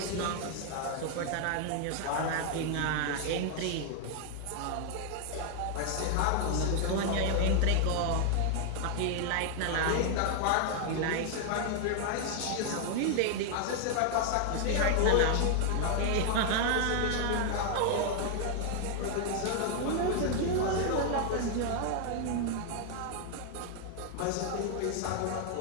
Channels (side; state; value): both; different; correlation 0.00